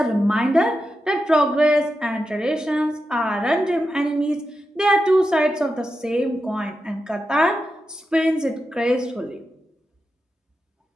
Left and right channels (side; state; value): both; normal; correlation 0.89